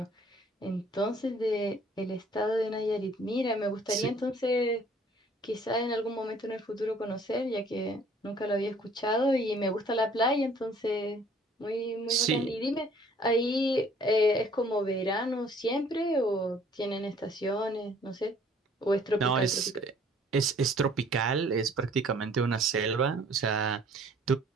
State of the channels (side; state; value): both; normal; correlation 0.57